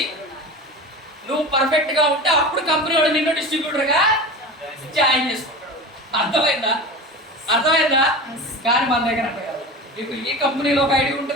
నువ్వు పర్ఫెక్ట్గా ఉంటే అప్పుడు కంపెనీ వాడు నిన్ను డిస్ట్రిబ్యూటర్గా జాయిన్ చేసుకుంటాడు. అర్థమైందా? కానీ మన దగ్గర మీకు ఈ కంపెనీలో ఒక ఐడి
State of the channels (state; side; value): normal; both; correlation 0.30